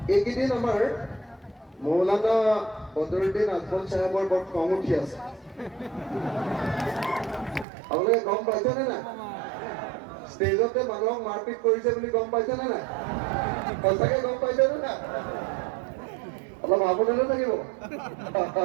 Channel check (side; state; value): left; drops out; at 7.7 s